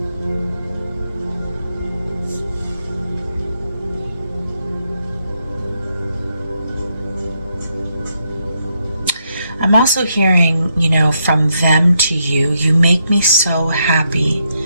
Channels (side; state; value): both; inverted; correlation -0.79